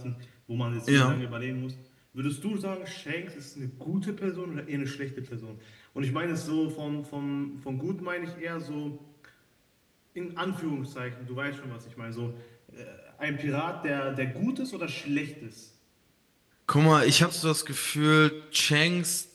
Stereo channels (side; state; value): both; identical; correlation 1.00